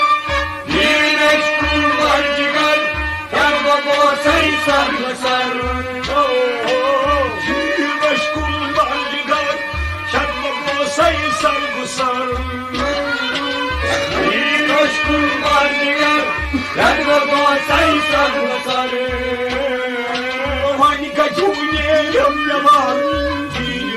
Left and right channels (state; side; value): identical; both; correlation 1.00